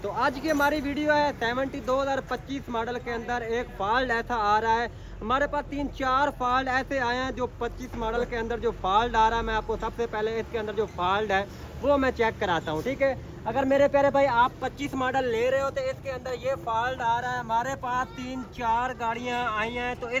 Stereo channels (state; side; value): identical; both; correlation 1.00